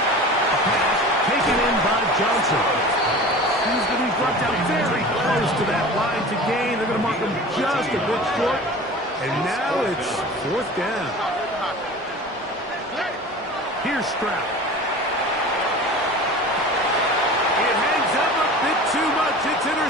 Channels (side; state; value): both; normal; correlation 0.37